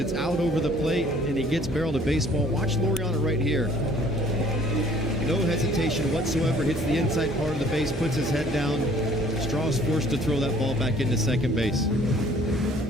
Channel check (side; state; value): both; normal; correlation 0.56